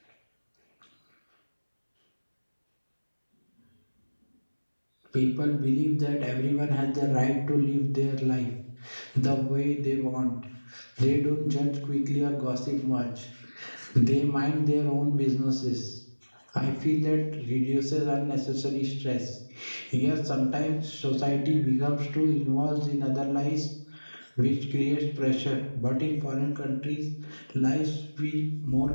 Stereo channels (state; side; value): inverted; both; correlation -1.00